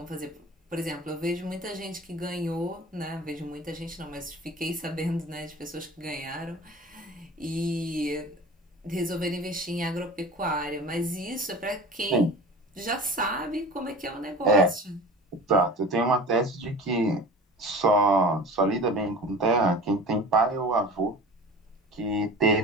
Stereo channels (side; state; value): both; normal; correlation 0.38